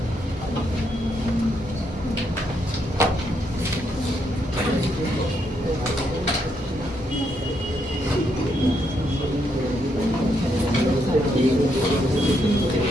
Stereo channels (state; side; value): normal; both; correlation 0.77